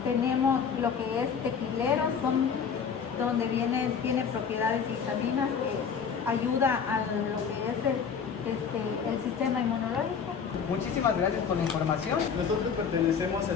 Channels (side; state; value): right; quieter; 6.6 dB